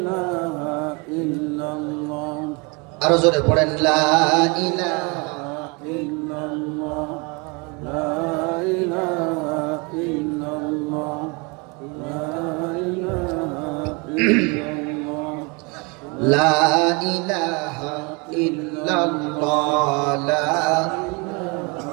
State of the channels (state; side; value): quieter; left; 29.8 dB